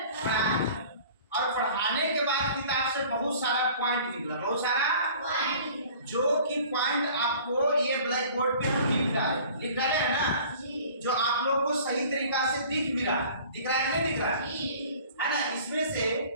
पढ़ा है और पढ़ाने के बाद किताब से बहुत सारा पॉइंट निकला, बहुत सारा जो कि पॉइंट आपको ये ब्लैक बोर्ड पे हम लिख डाले है ना, जो आप लोग को सही तरीका से दिख रहा है नहीं दिख रहा है ना। इसमें से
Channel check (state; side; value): inverted; both; correlation -0.47